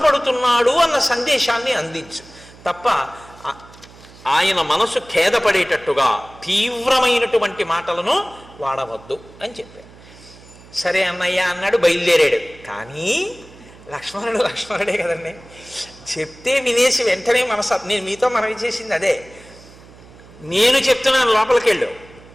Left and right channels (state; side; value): noise; right; hum, 22 dB below the sound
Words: అన్న సందేశాన్ని అందించు తప్ప ఆయన మనసు ఖేదపడేటట్టుగా తీవ్రమైనటువంటి మాటలను వాడవద్దు అని చెప్పాడు. సరే అన్నయ్య అన్నాడు, బయలుదేరాడు. కానీ లక్ష్మణుడే కదండి, చెప్తే వినేసి వెంటనే నేను మీతో మనవి చేసింది అదే. నేను చెప్తున్నాను లోపలికి వెళ్ళు